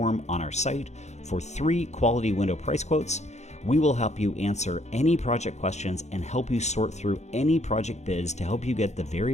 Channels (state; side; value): late; right; 0.33 ms